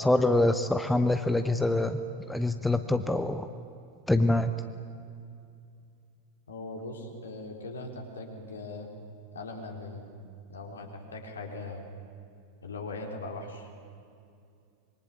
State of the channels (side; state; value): both; normal; correlation 0.80